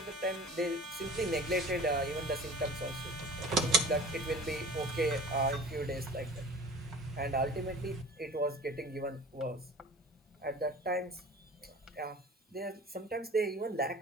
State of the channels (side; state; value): both; normal; correlation 0.42